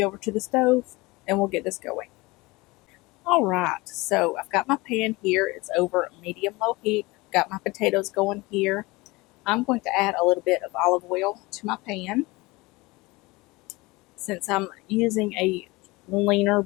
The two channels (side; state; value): right; quieter; 22.9 dB